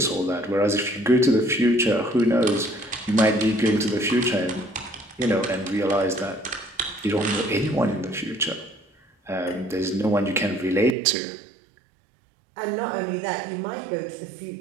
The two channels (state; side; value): drops out; left; at 11.0 s